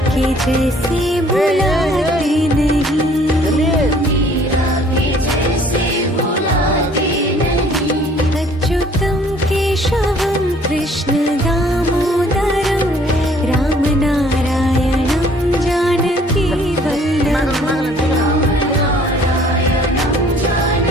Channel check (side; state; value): both; normal; correlation 0.57